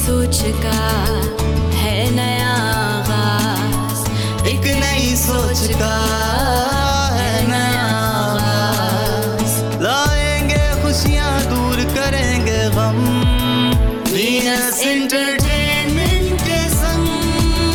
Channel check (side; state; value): both; identical; correlation 1.00